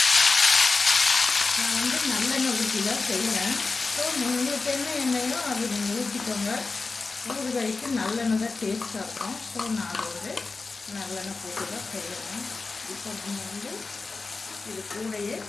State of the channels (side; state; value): right; quieter; 4.0 dB